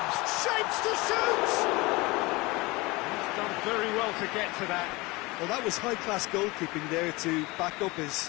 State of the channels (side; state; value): right; quieter; 23.4 dB